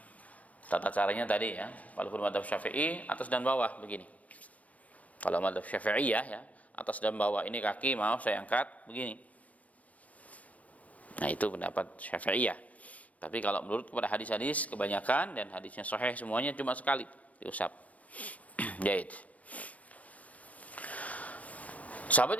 Tata caranya tadi ya, walaupun mazhab Syafi'i atas dan bawah begini. Kalau mazhab Syafi'iyah ya, atas dan bawah, ini kaki mau saya angkat begini. Nah, itu pendapat Syafi'iyah. Tapi kalau menurut kepada hadis-hadis kebanyakan dan hadisnya sahih semuanya cuma sekali diusap. Jahit.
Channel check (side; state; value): right; late; 0.070 ms